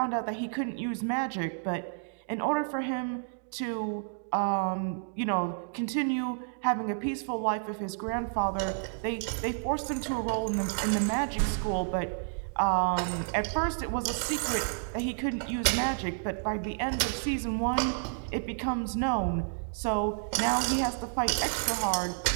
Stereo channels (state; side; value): silent; left; digital silence